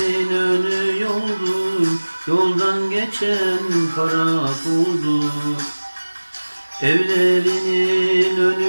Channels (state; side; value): inverted; both; correlation -1.00